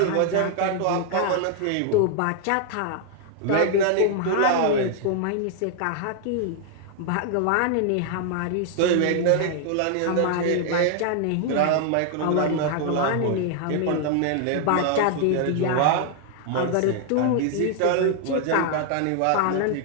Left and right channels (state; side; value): different; both; correlation 0.00